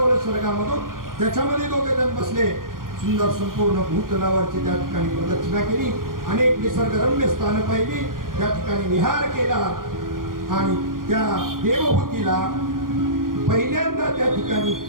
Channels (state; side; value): late; left; 0.91 ms